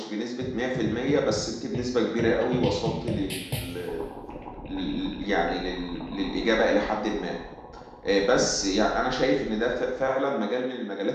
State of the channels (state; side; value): identical; both; correlation 1.00